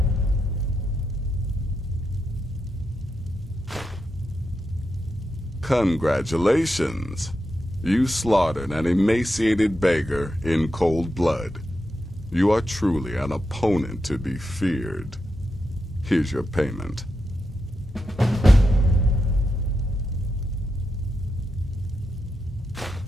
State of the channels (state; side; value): normal; both; correlation 0.86